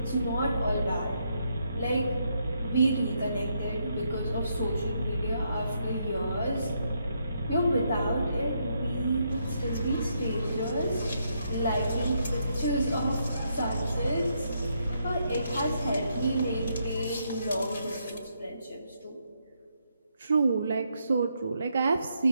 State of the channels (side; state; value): both; inverted; correlation -0.78